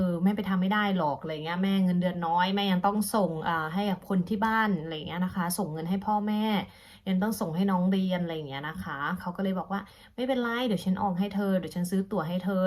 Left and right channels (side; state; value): both; identical; correlation 1.00